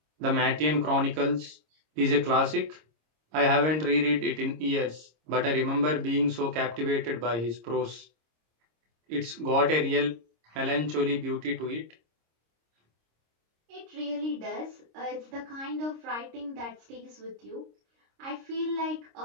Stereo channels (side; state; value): left; late; 26 ms